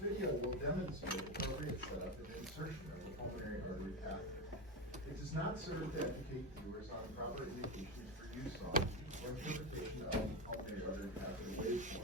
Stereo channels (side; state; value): both; normal; correlation 0.15